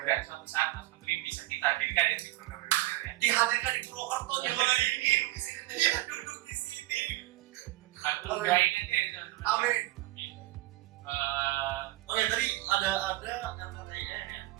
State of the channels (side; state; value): left; quieter; 18.3 dB